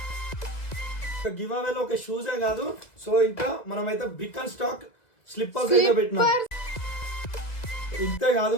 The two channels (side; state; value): right; late; 1.9 ms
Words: గివ్ అవేలో ఒక షూసే కాదు, సో ఇంకా మనమైతే బిగ్ అండ్ స్టాక్ స్లిప్పర్స్ అయితే పెట్టినాం. ఇంతే కాదు,